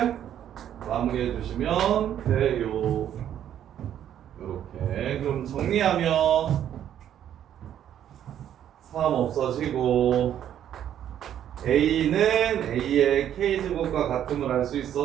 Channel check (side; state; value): left; quieter; 10.4 dB